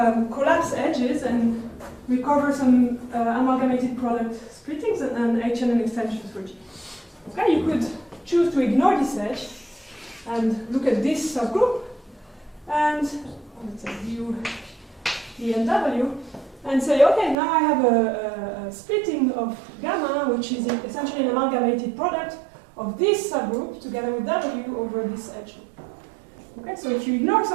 collapse edges and recover some amalgamated product splittings and H&N extensions for G. Okay, you could choose to ignore this edge and look at this subgroup and let's say view D and W and say, okay, now I have a splitting of gamma, which is essentially an amalgamated product of this subgroup together with W over this edge loop. Okay, so if you ignore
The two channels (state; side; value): drops out; left; at 17.4 s